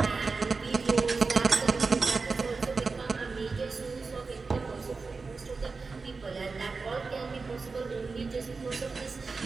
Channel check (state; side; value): quieter; left; 4.3 dB